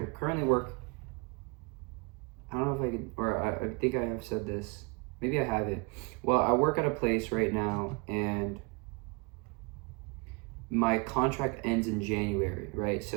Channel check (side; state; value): left; quieter; 28.5 dB